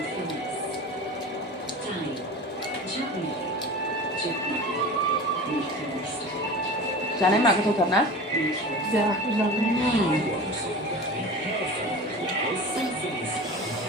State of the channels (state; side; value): normal; both; correlation 0.34